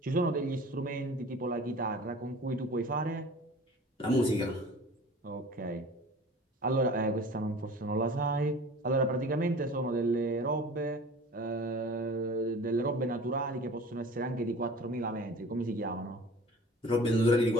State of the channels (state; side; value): normal; both; correlation 0.42